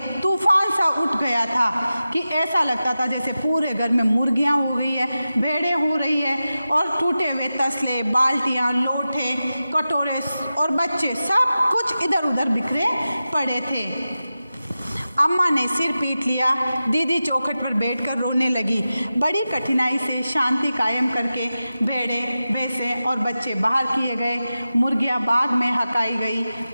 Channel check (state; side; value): inverted; both; correlation -0.93